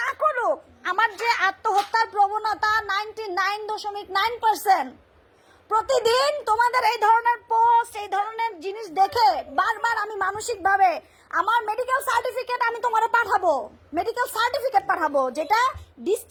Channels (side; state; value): both; identical; correlation 1.00